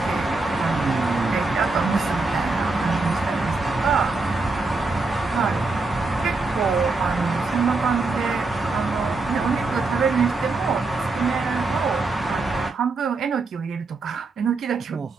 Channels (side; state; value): left; quieter; 3.7 dB